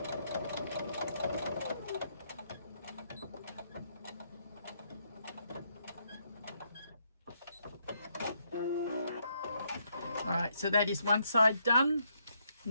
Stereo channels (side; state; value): both; inverted; correlation -0.75